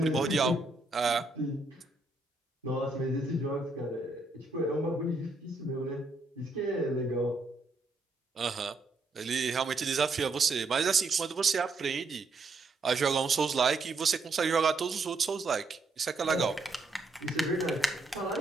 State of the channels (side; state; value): left; quieter; 3.4 dB